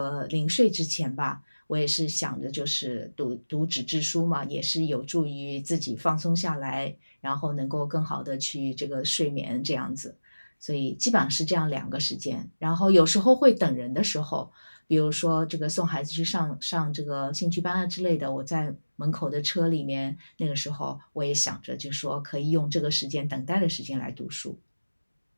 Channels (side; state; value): both; inverted; correlation -1.00